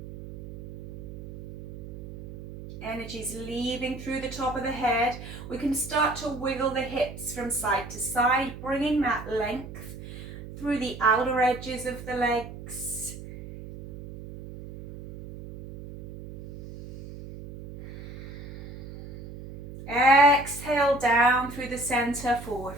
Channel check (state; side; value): noise; right; hum, 12 dB below the sound